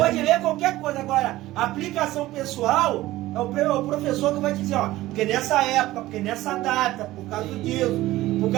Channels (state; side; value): quieter; left; 16.7 dB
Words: ler qualquer coisa. Agora, a aplicação pessoal é o professor que vai dizer, porque nessa época, porque nessa data, por causa disso, por